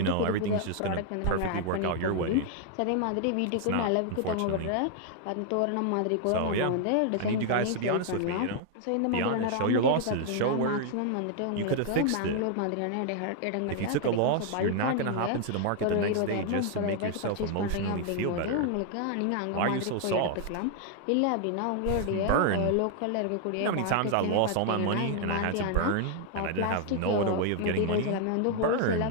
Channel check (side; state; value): both; different; correlation 0.00